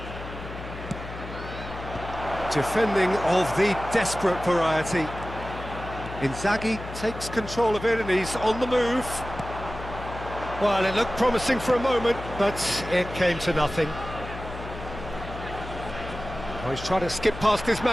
Defending of the desperate variety. Inzaghi takes control of it and he's on the move. Well, it looked promising for a moment, but it came to nothing. Oh, he's trying to skip past his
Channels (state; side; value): noise; left; hum, 11 dB below the sound